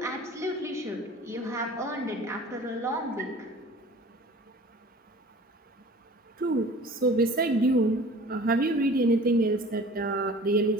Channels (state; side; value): normal; both; correlation 0.44